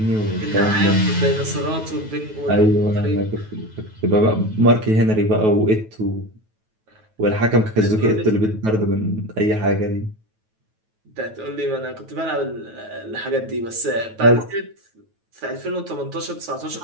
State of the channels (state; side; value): late; left; 9.2 ms